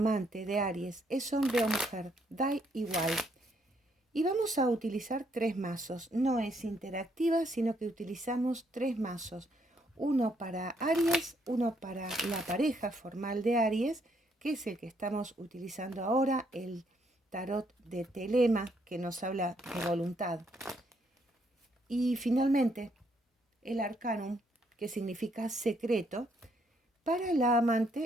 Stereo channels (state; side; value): normal; both; correlation 0.72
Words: de Aries es hombre o mujer, da igual. Y vamos a utilizar tres mazos. No es interactiva, sino que utilizamos tres mazos. Uno para Aries, uno para la pareja formal de Aries, que es el que estamos utilizando ahora, el tarot de Telema, que nos habla de voluntad. Y finalmente, el Arcanum, que significa secreto, para la